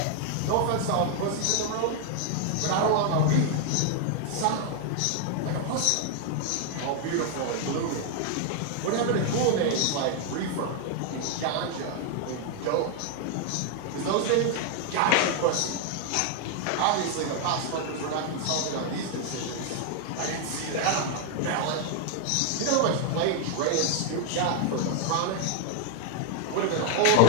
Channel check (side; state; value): both; different; correlation 0.00